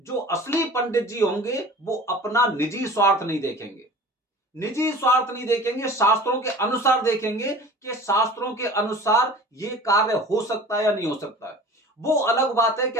असली पंडित जी होंगे, वो अपना निजी स्वार्थ नहीं देखेंगे, निजी स्वार्थ नहीं देखेंगे, शास्त्रों के अनुसार देखेंगे कि शास्त्रों के अनुसार ये कार्य हो सकता है या नहीं हो सकता है। वो अलग बात है कि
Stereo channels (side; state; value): both; normal; correlation 0.42